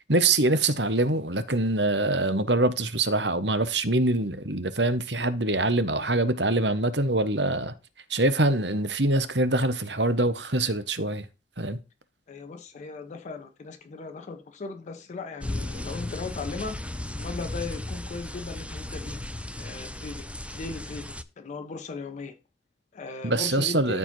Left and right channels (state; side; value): normal; both; correlation 0.25